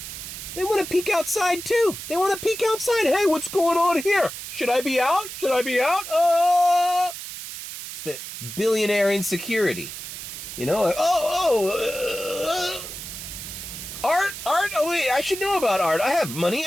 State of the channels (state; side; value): noise; right; hiss, 9 dB below the sound